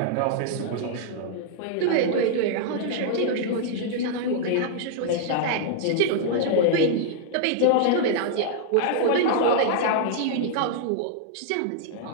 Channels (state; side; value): different; both; correlation -0.01